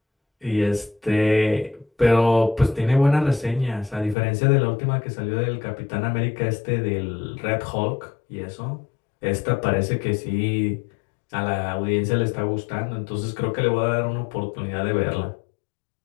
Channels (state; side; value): drops out; right; at 4.2 s